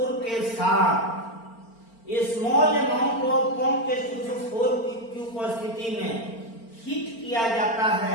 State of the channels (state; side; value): late; right; 4.4 ms